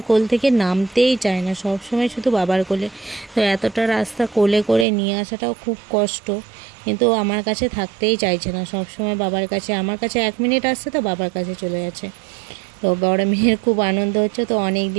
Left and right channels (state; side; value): drops out; left; at 4.9 s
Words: কোল থেকে নামতেই চায় না, সব সময় শুধু বাবার কোলে। তো এতটা রাস্তা কোলে করে নিয়ে আসাটাও খুব কষ্ট, কিন্তু আমার কাছে থাকতেই চাইছে না, সব সময় বাবার কাছে। আমার কাছে 1 মিনিট আসছে তো বাবার কাছে চলে যাচ্ছে। তো বড় মেয়ের খুব আনন্দ হচ্ছে, তো অনেক